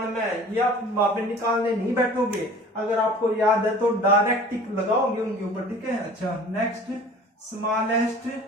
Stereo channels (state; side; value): normal; both; correlation 0.45